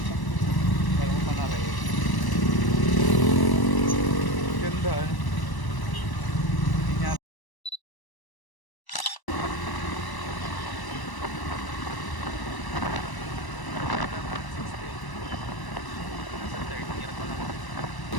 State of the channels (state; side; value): late; right; 1.0 ms